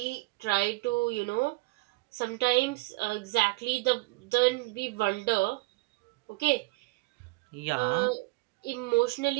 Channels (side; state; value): left; quieter; 22.9 dB